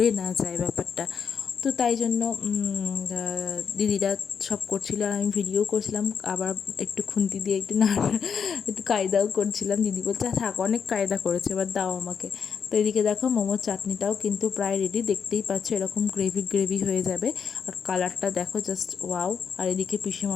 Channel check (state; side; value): quieter; right; 6.7 dB